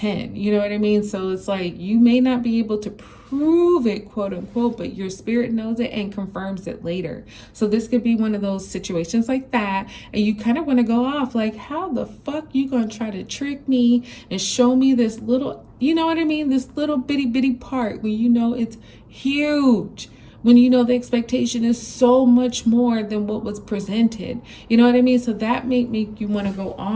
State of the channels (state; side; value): identical; both; correlation 1.00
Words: You know what I mean? So it's like you may not be able to prove it, quote unquote, but your spirit knows it and confirms it later. So this could be one of those situations like that. And you kind of want to go off like, how the fuck you gonna try to trick me and show me this little, you know what I mean? This little bitty part when you know it's huge. When you know the expectation is so much more than what was presented. You know what I mean? So that may make you want to go